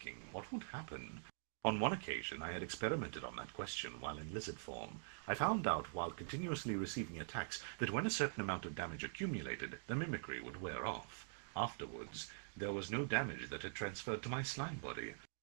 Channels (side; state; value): left; silent; digital silence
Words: what would happen? On one occasion, I had experimented on that question while in lizard form. I found out while continuously receiving attacks that when a certain amount of damage accumulated, the mimicry would wear off. Afterwards, there was no damage that had transferred to my slime body.